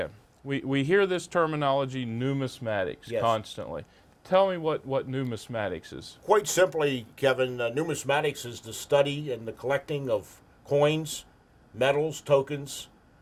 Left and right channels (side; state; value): both; identical; correlation 1.00